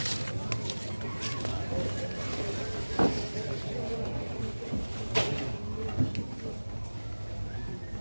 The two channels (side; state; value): both; inverted; correlation -1.00